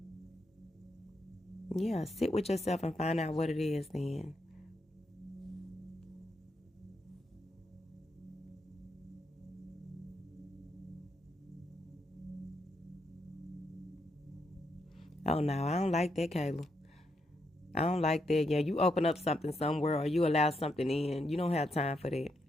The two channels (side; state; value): both; normal; correlation 0.80